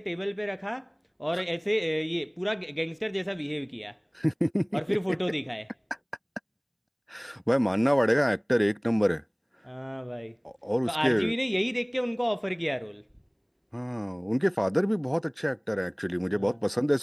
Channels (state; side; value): identical; both; correlation 1.00